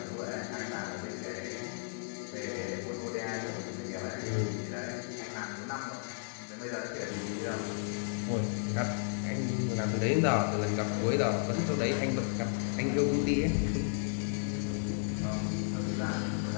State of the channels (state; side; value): silent; right; digital silence